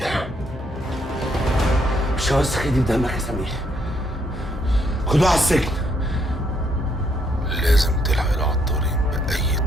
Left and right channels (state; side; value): normal; both; correlation 0.72